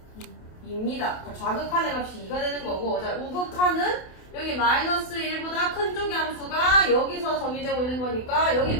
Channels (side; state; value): right; late; 28 ms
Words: 2입니다. 좌극한의 값이 2가 되는 거고 자, 우극한은 여기 마이너스 1보다 큰 쪽의 함수가 여기서 정의되고 있는 거니까 여기